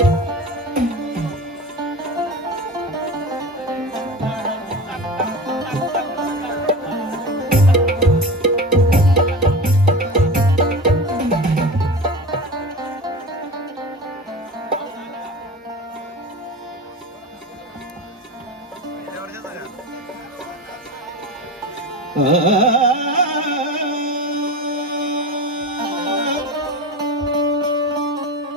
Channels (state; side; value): normal; both; correlation 0.30